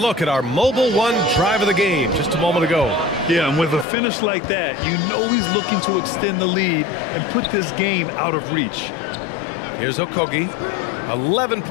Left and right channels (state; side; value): drops out; right; at 3.9 s